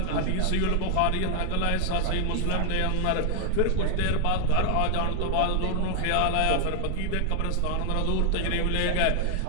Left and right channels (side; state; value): both; different; correlation 0.00